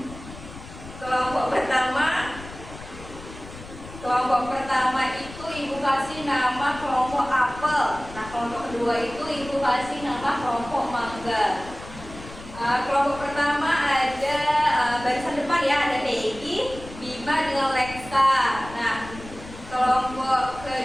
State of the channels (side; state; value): left; noise; rumble, 15 dB below the sound